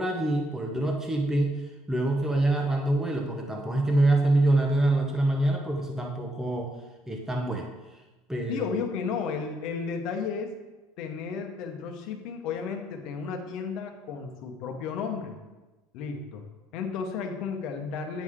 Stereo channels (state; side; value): normal; both; correlation 0.76